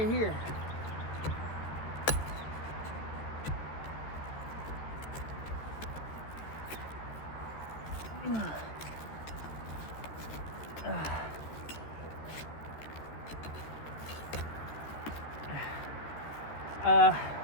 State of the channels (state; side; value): late; right; 14 ms